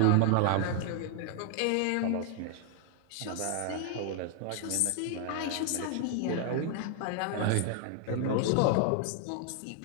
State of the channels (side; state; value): both; different; correlation 0.00